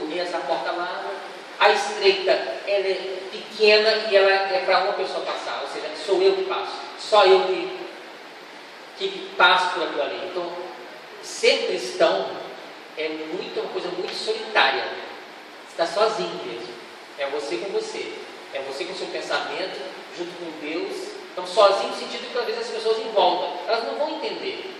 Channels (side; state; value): both; identical; correlation 1.00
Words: é essa porta larga. A estreita, ela é pequena e ela é para uma pessoa passar, ou seja, sou eu que passo, só eu que passo por aquilo ali. Então, ser cristão é uma coisa muito solitária. Você está sozinho mesmo. É você com você. É você com o seu pensamento, junto com Deus, Então, sozinho no sentido que talvez as pessoas em volta, elas não vão entender,